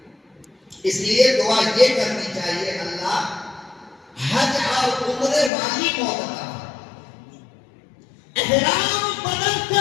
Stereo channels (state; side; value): drops out; right; at 5.5 s